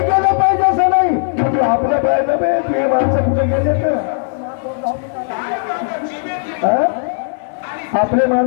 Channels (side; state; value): right; silent; 65 dB below the other